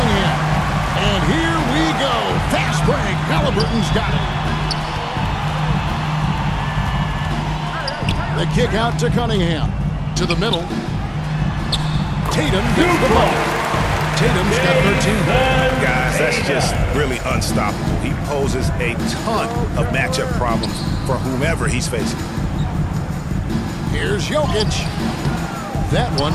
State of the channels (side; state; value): both; identical; correlation 1.00